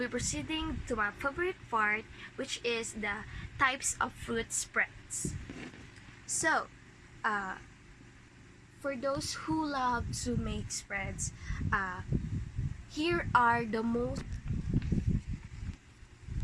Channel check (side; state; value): both; identical; correlation 1.00